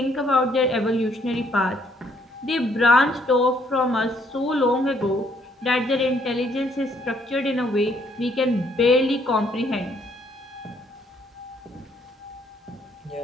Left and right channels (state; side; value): normal; both; correlation 0.68